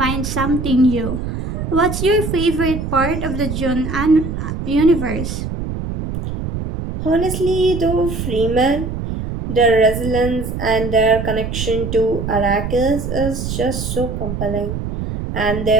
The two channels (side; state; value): right; noise; rumble, 5 dB below the sound